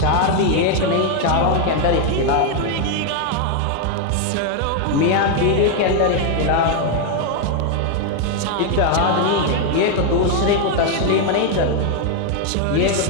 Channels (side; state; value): both; different; correlation 0.01